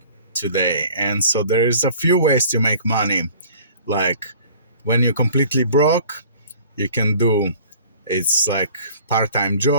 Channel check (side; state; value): both; inverted; correlation -0.49